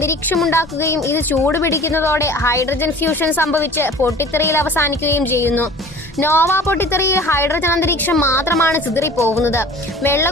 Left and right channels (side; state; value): both; normal; correlation 0.45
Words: ഉണ്ടാക്കുകയും ഇത് ചൂടുപിടിക്കുന്നതോടെ ഹൈഡ്രജൻ ഫ്യൂഷൻ സംഭവിച്ച് പൊട്ടിത്തെറിയിൽ അവസാനിക്കുകയും ചെയ്യുന്നു. നോവ പൊട്ടിത്തെറിയിൽ ഹൈഡ്രജൻ അന്തരീക്ഷം മാത്രമാണ് ചിതറിപ്പോകുന്നത്.